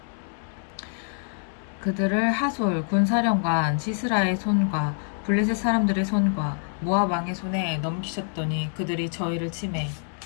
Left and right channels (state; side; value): silent; right; 61 dB below the other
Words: 시스라의 손과 블레셋 사람들의 손과 모압 왕의 손에 넘기셨더니 그들이 저희를 치매